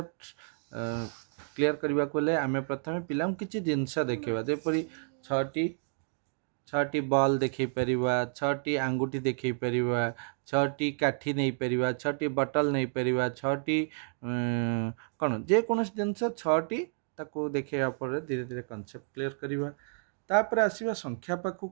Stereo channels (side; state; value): left; silent; digital silence